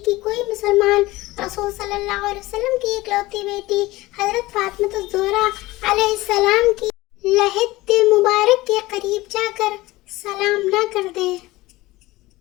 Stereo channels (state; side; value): quieter; right; 19.2 dB